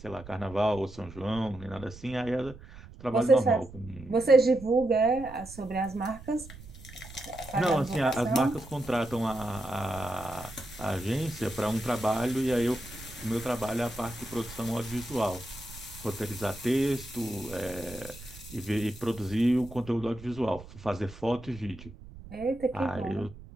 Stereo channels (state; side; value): noise; right; rumble, 16 dB below the sound